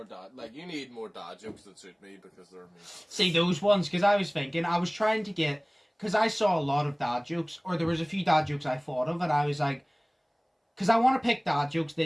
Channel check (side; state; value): both; identical; correlation 1.00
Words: dad? Like, you need more dad jokes that suit me because they're me. See, those ones, because I was thinking, I was trying to get, because I saw a lot of dad jokes, or there was a few dad jokes I thought of, and I was like, because I want to pick dad jokes